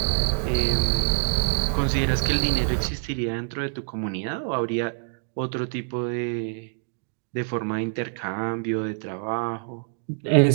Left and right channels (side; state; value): left; silent; digital silence